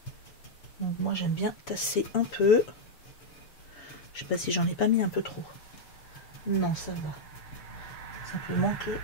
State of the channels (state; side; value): late; right; 7.0 ms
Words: Donc moi j'aime bien tasser un peu. Je sais pas si j'en ai pas mis un peu trop. Non, ça va. Simplement